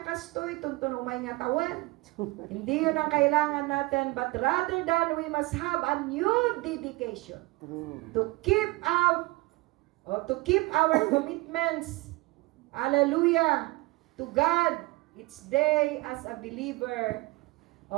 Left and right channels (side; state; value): left; quieter; 22.6 dB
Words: kastoy tuntun umay nga tawen. Hindi yun ang kailangan natin, but rather than we must have a new dedication to keep our commitments. Hallelujah to God each day as a believer